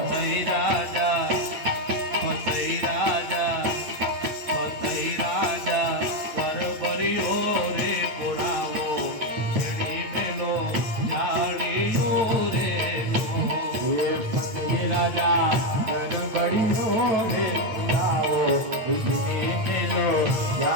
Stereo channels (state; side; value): late; left; 8.8 ms